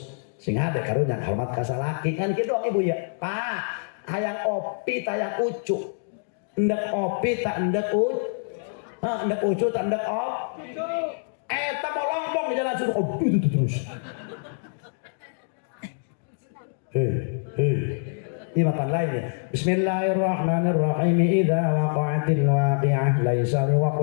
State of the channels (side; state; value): right; silent; digital silence